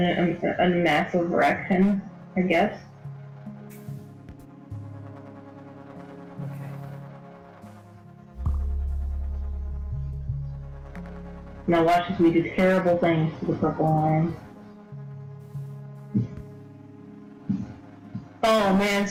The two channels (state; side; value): identical; both; correlation 1.00